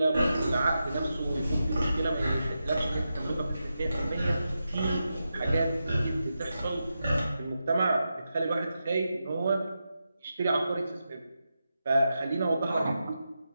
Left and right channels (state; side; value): inverted; both; correlation -0.89